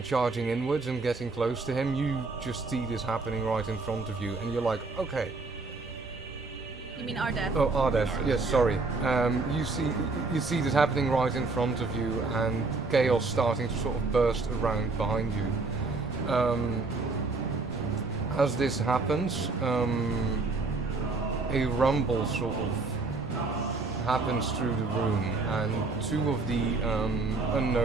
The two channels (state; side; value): quieter; left; 3.7 dB